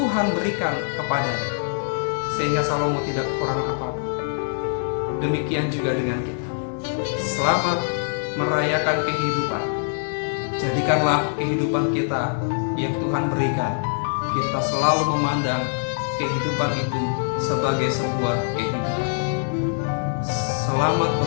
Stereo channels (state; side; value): silent; right; digital silence